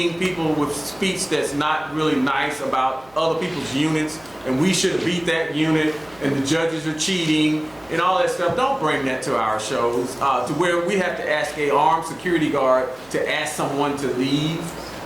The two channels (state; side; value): noise; right; hum, 28 dB below the sound